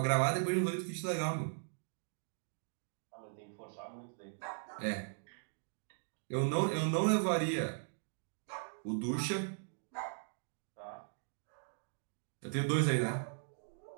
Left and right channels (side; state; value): left; silent; digital silence